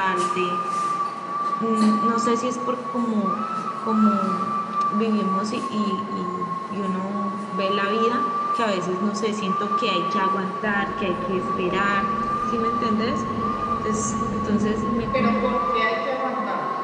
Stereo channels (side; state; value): both; identical; correlation 1.00